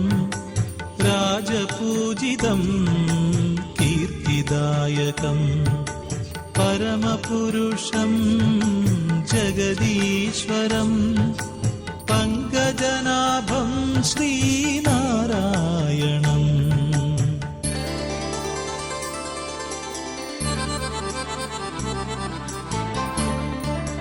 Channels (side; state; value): both; identical; correlation 1.00